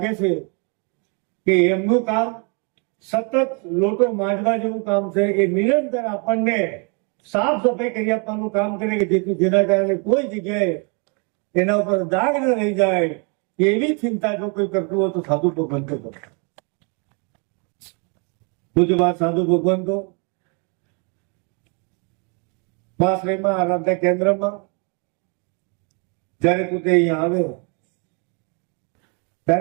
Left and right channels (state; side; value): quieter; left; 35.7 dB